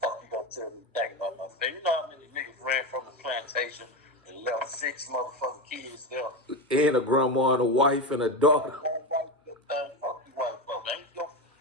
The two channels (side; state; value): both; normal; correlation 0.17